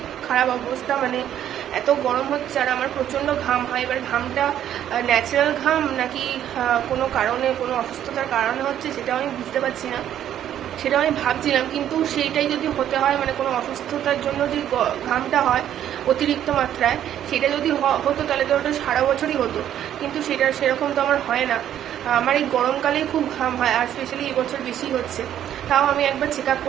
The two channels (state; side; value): quieter; left; 10.8 dB